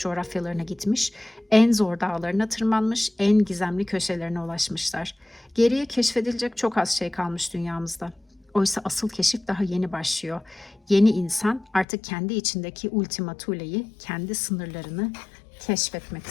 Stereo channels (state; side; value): drops out; right; at 11.9 s